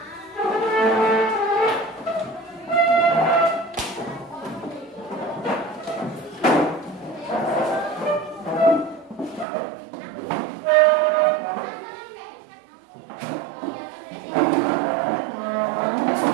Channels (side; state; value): left; drops out; at 9.5 s